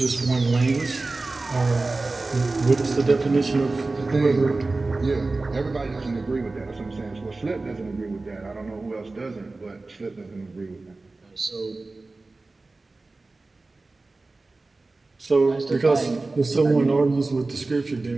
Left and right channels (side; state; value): left; quieter; 3.4 dB